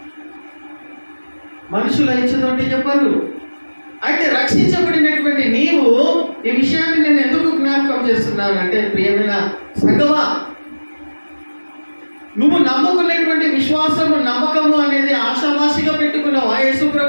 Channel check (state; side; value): inverted; both; correlation -1.00